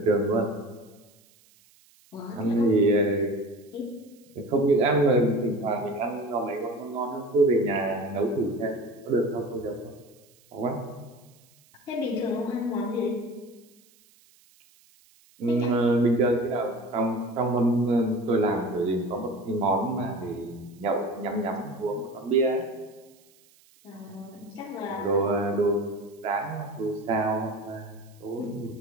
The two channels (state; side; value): noise; right; hiss, 30 dB below the sound